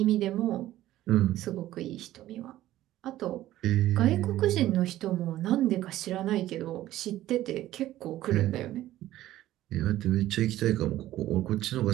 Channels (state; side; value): quieter; left; 14.4 dB